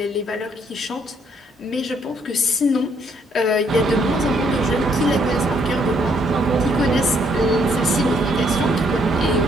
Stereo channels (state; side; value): normal; both; correlation 0.69